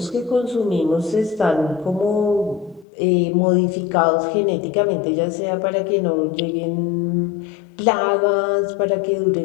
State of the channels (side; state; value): right; drops out; at 2.9 s